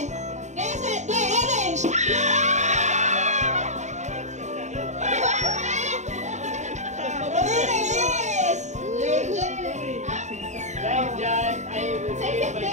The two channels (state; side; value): late; left; 0.34 ms